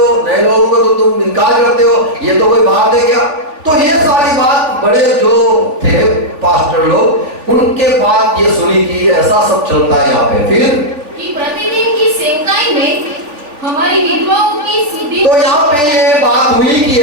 नए लोगों को तो तुम इनकार करते हो, ये तो कोई बात है क्या? तो ये सारी बात बड़े जो थे पास्टर लोग, उनके बाद ये सुनी कि ऐसा सब चलता है यहाँ पे। फिर कि प्रतिदिन की सेवकाई में हमारी विधवाओं की शुद्धि। तो यहाँ पे ये बात हुई कि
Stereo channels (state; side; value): late; left; 3.4 ms